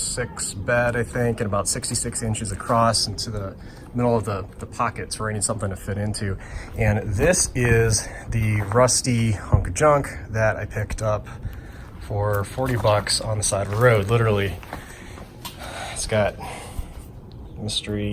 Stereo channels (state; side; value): identical; both; correlation 1.00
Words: bed, I think, and about 66 inches across into the middle of the pockets where I need something to fit into. And this is the rusty hunk of junk that I picked up for 40 bucks on the side of the road, literally. It's got